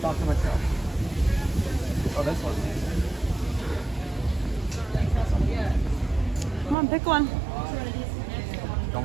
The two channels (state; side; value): drops out; left; at 6.8 s